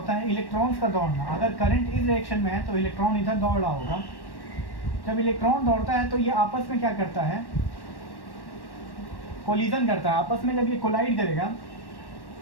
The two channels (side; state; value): right; late; 1.1 ms